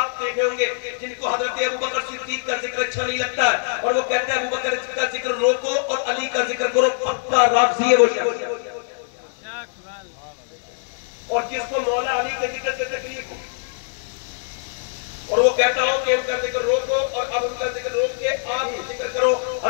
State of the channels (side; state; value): right; silent; digital silence